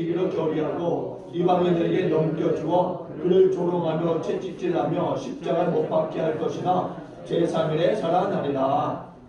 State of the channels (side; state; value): both; identical; correlation 1.00